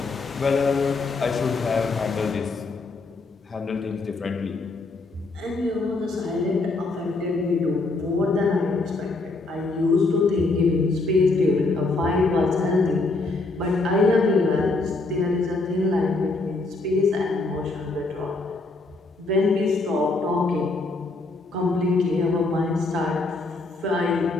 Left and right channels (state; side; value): quieter; right; 3.4 dB